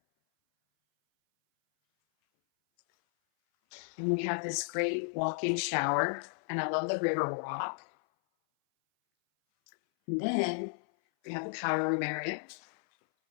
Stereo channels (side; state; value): right; silent; 56 dB below the other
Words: And we have this great walk-in shower. And I love the river rock. And then we have the powder room area.